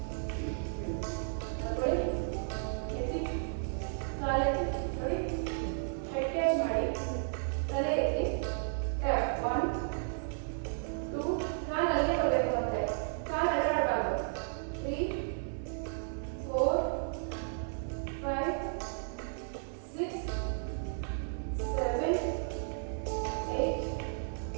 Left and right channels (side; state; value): left; silent; 55 dB below the other